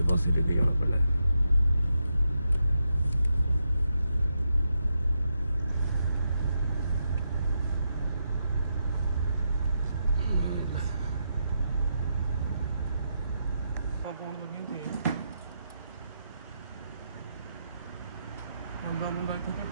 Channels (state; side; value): inverted; both; correlation -0.83